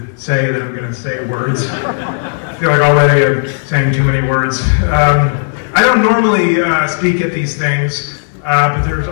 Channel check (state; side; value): silent; right; digital silence